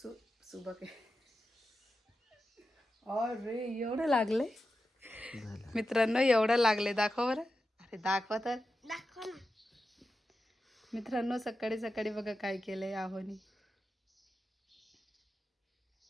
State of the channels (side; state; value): both; normal; correlation 0.91